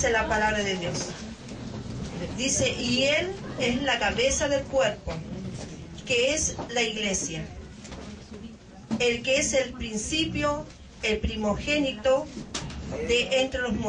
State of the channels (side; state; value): both; identical; correlation 1.00